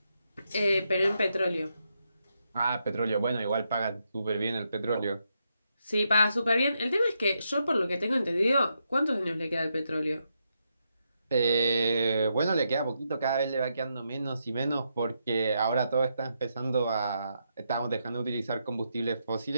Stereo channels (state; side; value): inverted; both; correlation -0.82